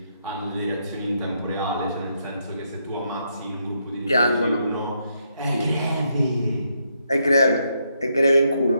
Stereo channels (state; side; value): inverted; both; correlation -0.78